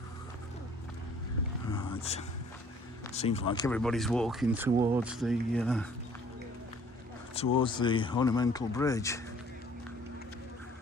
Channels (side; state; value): both; normal; correlation 0.56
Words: Right. Seems like everybody's walking towards the ornamental bridge